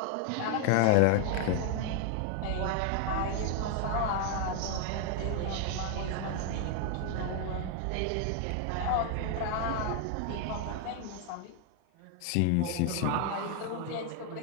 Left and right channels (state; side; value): different; both; correlation 0.00